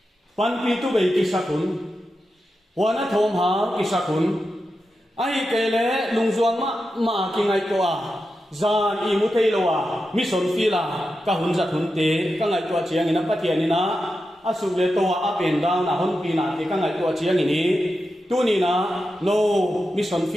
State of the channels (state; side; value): normal; both; correlation 0.90